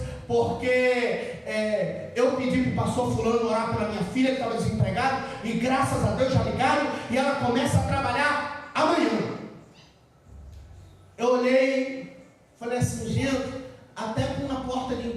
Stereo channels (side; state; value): both; identical; correlation 1.00